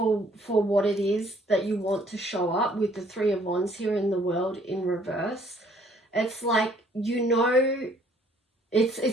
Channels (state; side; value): normal; both; correlation 0.62